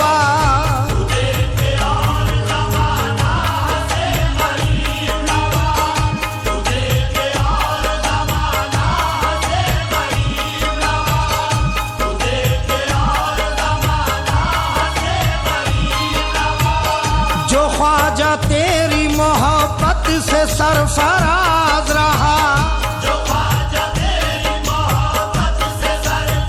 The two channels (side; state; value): both; identical; correlation 1.00